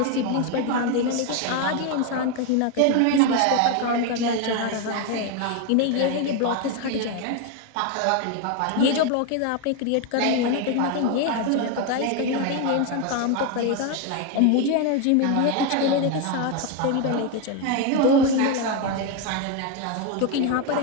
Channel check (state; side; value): different; both; correlation 0.02